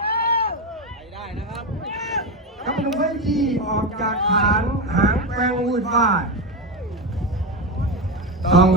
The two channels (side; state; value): both; normal; correlation 0.16